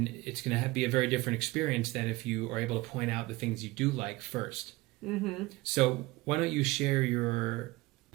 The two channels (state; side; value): quieter; left; 20.9 dB